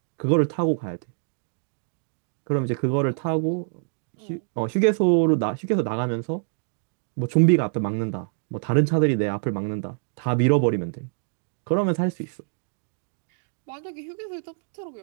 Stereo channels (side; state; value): left; silent; digital silence